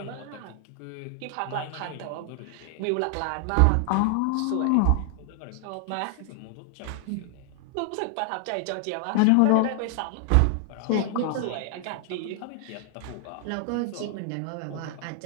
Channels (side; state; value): both; different; correlation 0.00